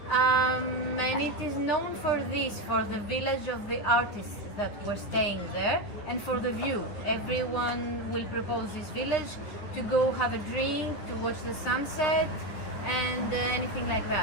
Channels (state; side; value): late; right; 9.7 ms